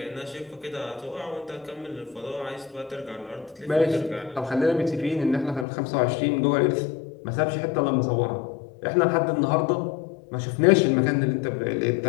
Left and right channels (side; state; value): right; drops out; at 5.7 s